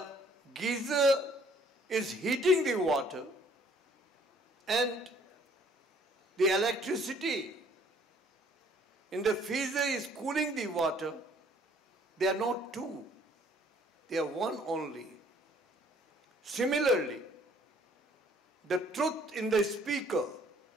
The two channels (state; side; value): normal; both; correlation 0.60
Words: geyser is heating the water and the electricity in the freezer is cooling the water. They are not two. They are one only. Similarly, the truth in the speaker